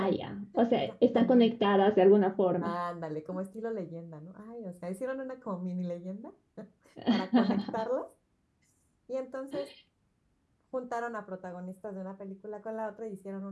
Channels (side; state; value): both; identical; correlation 1.00